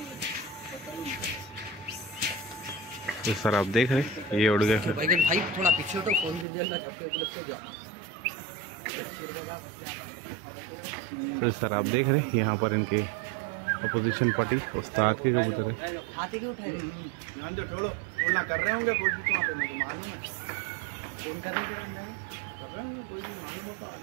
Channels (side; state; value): left; drops out; at 6.5 s